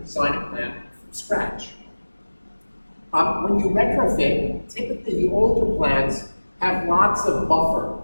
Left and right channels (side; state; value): both; inverted; correlation -1.00